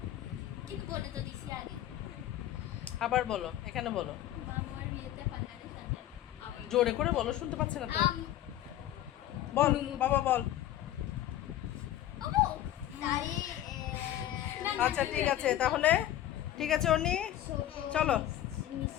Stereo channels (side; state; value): right; quieter; 12.8 dB